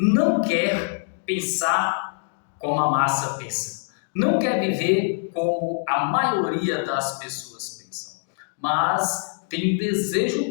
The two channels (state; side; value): silent; right; digital silence